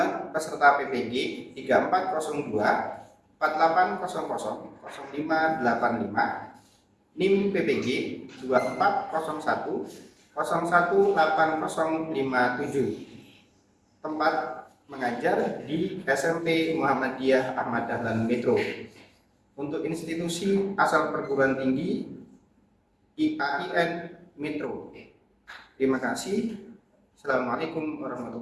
peserta PPG 3402 4800 0585, NIM PPG 2401 018057. Tempat mengajar di SMP Muhammadiyah Ahmad Dahlan Metro. Untuk institusi asal perguruan tinggi IAIN Metro. Terima kasih. Assalamualaikum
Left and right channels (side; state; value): both; identical; correlation 1.00